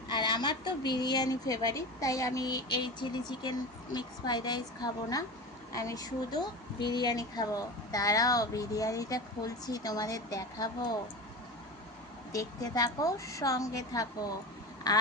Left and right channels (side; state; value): both; normal; correlation 0.28